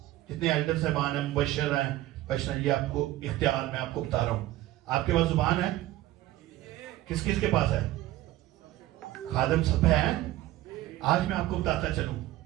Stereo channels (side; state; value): left; quieter; 15.6 dB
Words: جتنے ایلڈر صاحبان ہیں, مبشر ہیں, یہ آپ کو اختیار میں آپ کو بتا رہا ہوں. آپ کے پاس زبان ہے, کس کس کے پاس ہے, خادم سب ہیں. آج میں آپ کو بتاتا چلوں